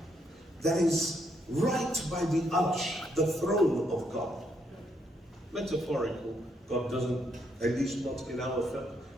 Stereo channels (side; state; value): both; normal; correlation 0.75